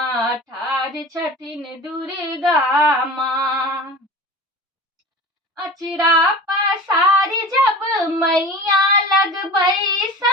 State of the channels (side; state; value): both; normal; correlation 0.35